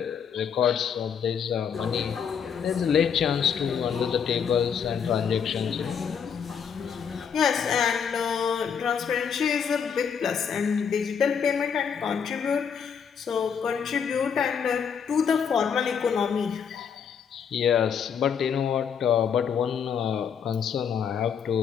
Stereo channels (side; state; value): right; quieter; 7.2 dB